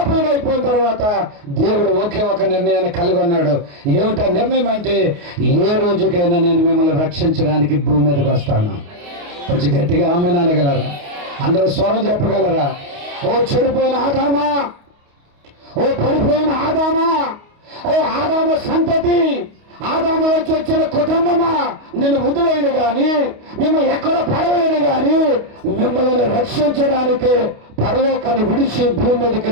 అయిపోయిన తర్వాత దేవుడు ఒకే ఒక నిర్ణయాన్ని కలిగి ఉన్నాడు. ఏమిటా నిర్ణయం అంటే, ఏ రోజుకైనా నేను మిమ్మల్ని రక్షించడానికి భూమి మీదకి వస్తాను. కొంచెం గట్టిగా ఆమె అనగలరా? అందరూ స్వరం చెప్పగలరా? ఓ చెడిపోయిన ఆదామా, ఓ పడిపోయిన ఆదామా, ఓ ఆదాము సంతతి, ఆదాములోకి వచ్చిన కుటుంబమా, నేను వదిలేను కానీ, మిమ్మల్ని ఎక్కడ పడవేయను కానీ, మిమ్మల్ని రక్షించడానికి పరలోకాన్ని విడిచి భూమి మీదకి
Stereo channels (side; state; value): left; late; 29 ms